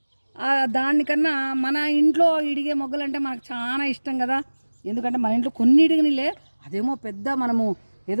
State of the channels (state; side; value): inverted; both; correlation -1.00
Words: దానికన్నా మన ఇంట్లో ఇడిగే మొగ్గలు అంటే మనకు చాలా ఇష్టం కదా. ఎందుకంటే మన ఇంట్లో కొన్ని ఇడిగినిలే, అదేమో పెద్ద మనము